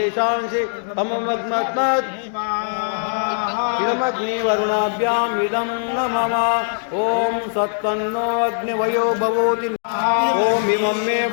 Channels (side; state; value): right; silent; digital silence